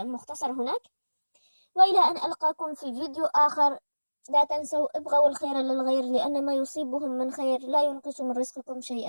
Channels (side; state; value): both; inverted; correlation -1.00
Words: مختصر هناك. وإلى أن ألقاكم في فيديو آخر، لا تنسوا ابغوا الخير للغير، لأن ما يصيبهم من خير لا ينقص من رزقكم